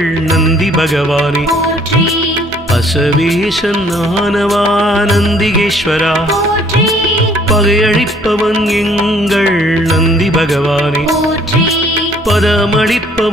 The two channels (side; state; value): both; normal; correlation 0.60